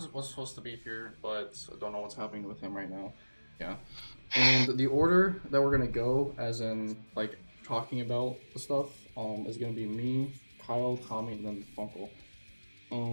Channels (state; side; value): inverted; both; correlation -1.00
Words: was supposed to be here, but I don't know what's happening with him right now. Yeah. And the order that we're going to go, as in like talking about the stuff, is going to be me, Kyle, Tommy, and then Funkel.